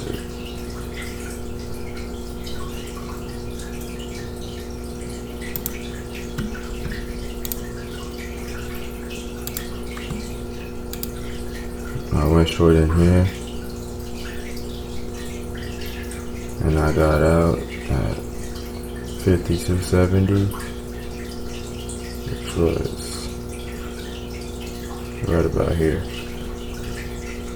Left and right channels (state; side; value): identical; both; correlation 1.00